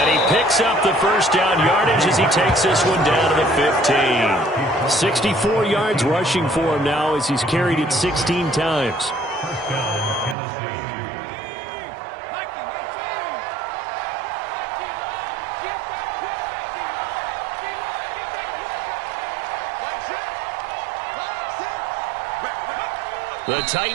he picks up the 1st down yardage as he takes this one down to the 15. 64 yards rushing for him now as he's carried it 16 times. The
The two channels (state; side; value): drops out; left; at 10.4 s